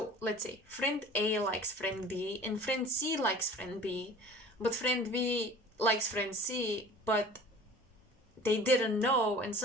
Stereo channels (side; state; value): both; normal; correlation 0.44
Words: let's say friend A likes friend B and friend C likes friend B, but friend B likes friend C, but they didn't know and